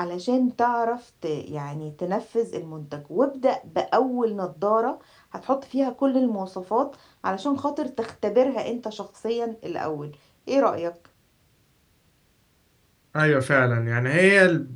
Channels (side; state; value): both; identical; correlation 1.00